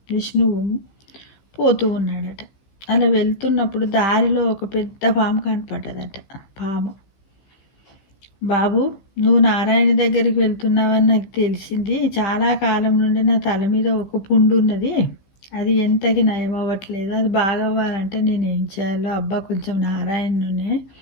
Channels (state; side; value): late; right; 15 ms